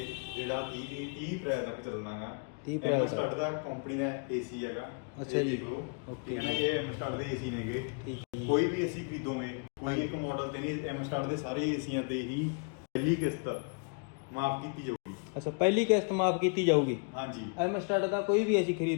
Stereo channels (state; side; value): quieter; right; 36.5 dB